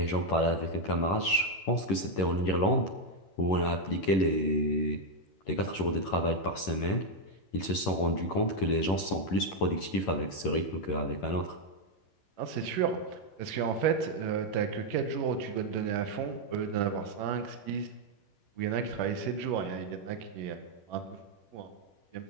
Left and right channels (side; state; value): right; late; 11 ms